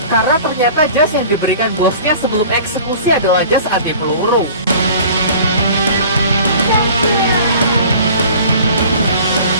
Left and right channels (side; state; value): both; inverted; correlation -0.45